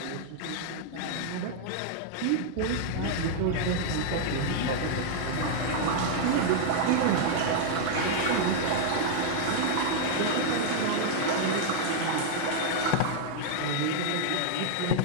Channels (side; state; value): both; different; correlation 0.00